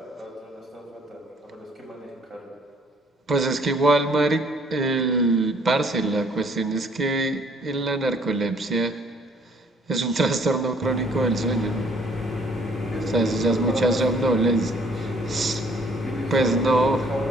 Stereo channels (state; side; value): normal; both; correlation 0.60